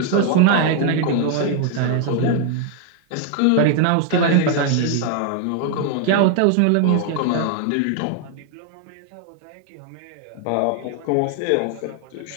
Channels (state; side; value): different; both; correlation 0.00